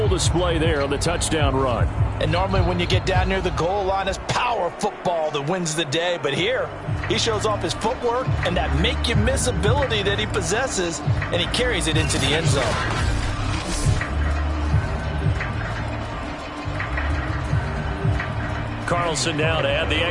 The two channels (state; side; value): identical; both; correlation 1.00